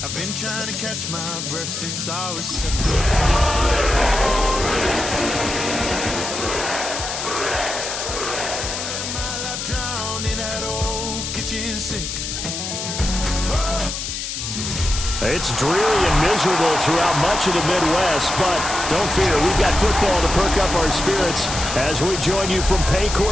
I've been trying to catch my breath since I was 7. My life drowned in that old kitchen sink. It's dreary and miserable throughout much of the Midwest, but don't fear, we've got football to perk up our spirits as we join you from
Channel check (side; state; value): left; noise; hiss, 5 dB below the sound